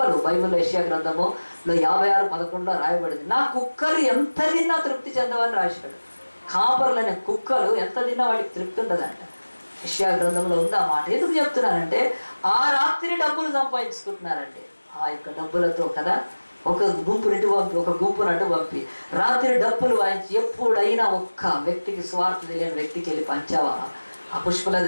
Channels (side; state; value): both; inverted; correlation -1.00